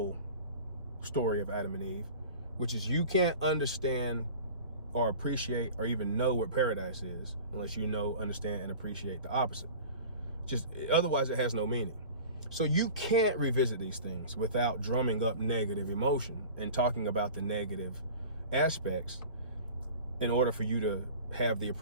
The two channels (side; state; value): both; inverted; correlation -0.39